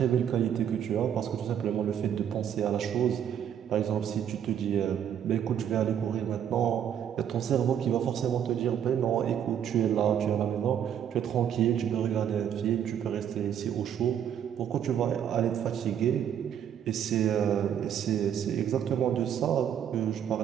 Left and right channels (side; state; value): left; quieter; 9.2 dB